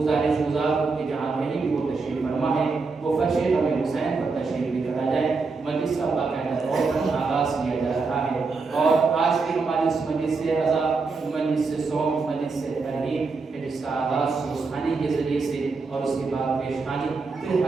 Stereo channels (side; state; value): left; quieter; 4.3 dB